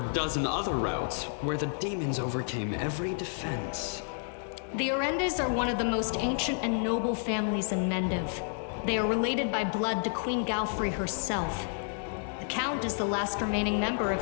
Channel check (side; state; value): right; silent; 58 dB below the other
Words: other routes where the demons overcame every defense. The Orendes are one of the most ancient and noble families in Mendiv. They are related by blood to Queen Galfrey herself. The Count is the last remaining member